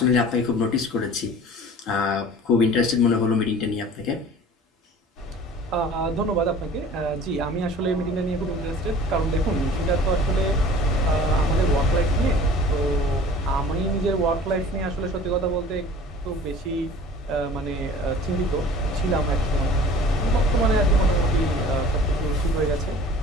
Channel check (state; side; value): normal; both; correlation 0.45